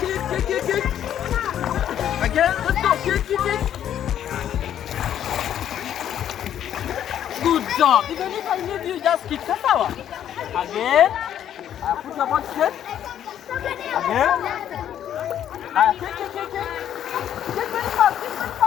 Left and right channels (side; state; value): right; quieter; 10.3 dB